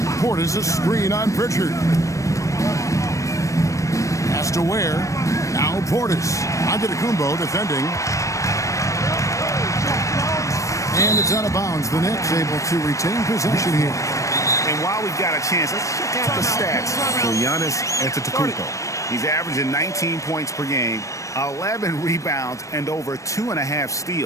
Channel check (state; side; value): late; right; 0.15 ms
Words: Portis a screen on Pritchard. Pass to Ware. Now Portis. Antetokounmpo defending. And it's out of bounds. The Knicks able to retain possession here. And while we've got a chance, let's check out the stats for Giannis Antetokounmpo. He's averaging 19 points per game, 11 rebounds, and over 2.5